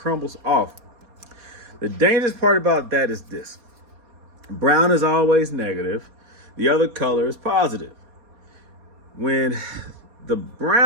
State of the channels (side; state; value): left; late; 4.2 ms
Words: off. The dangerous part about that is this. Brown is always negative. The other color is positive. When the